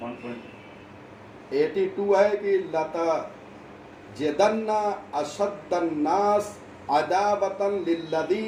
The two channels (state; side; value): identical; both; correlation 1.00